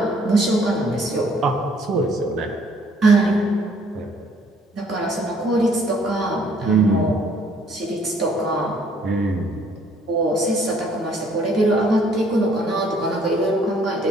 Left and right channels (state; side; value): normal; both; correlation 0.62